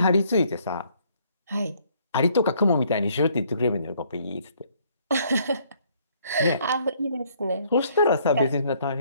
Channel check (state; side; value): inverted; both; correlation -0.65